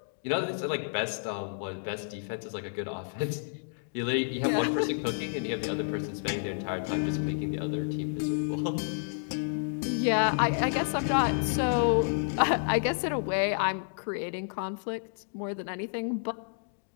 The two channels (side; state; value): right; silent; digital silence